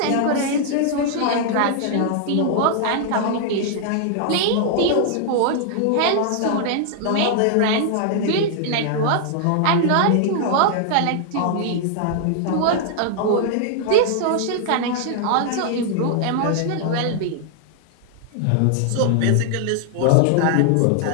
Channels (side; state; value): both; different; correlation -0.01